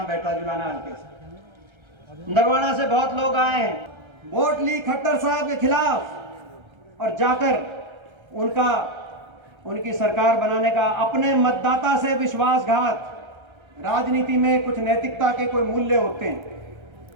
बैठा? जुलाना हल्के से, नरवाना से बहुत लोग आए हैं, वोट ली खट्टर साहब के खिलाफ, और जाकर उनकी सरकार बनाने का अपने मतदाता से विश्वासघात। राजनीति में कुछ नैतिकता के कोई मूल्य होते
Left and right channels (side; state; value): left; late; 1.3 ms